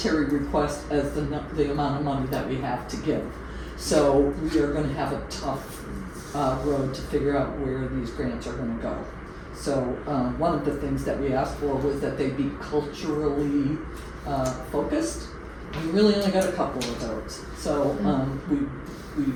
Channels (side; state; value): both; identical; correlation 1.00